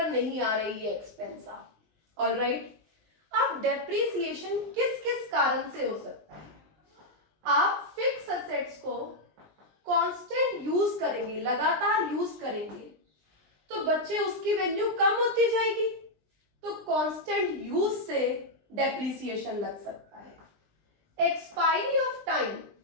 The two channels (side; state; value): left; late; 20 ms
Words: नहीं आ रही है एक्सपेंस आप। ऑल राइट, अब डेप्रिसिएशन किस किस कारण से हो सकता है? आप फिक्स असेट्स को कांस्टेंट यूज करेंगे, लगातार यूज करेंगे, तो बच्चे उसकी वैल्यू कम होती जाएगी, तो कांस्टेंट यूज से डेप्रिसिएशन लग सकता है। एक्सपायरी ऑफ टाइम,